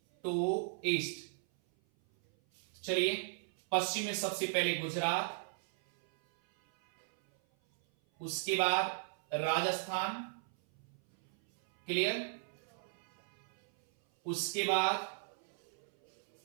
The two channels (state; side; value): silent; left; 53 dB below the other